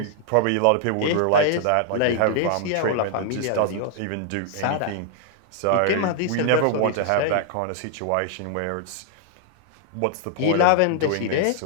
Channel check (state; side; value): different; both; correlation 0.00